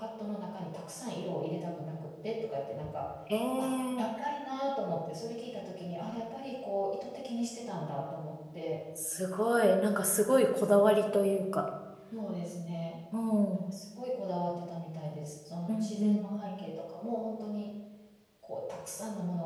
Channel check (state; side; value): identical; both; correlation 1.00